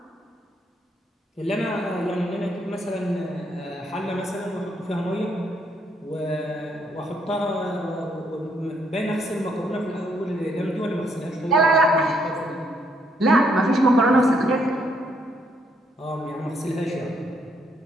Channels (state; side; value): normal; both; correlation 0.72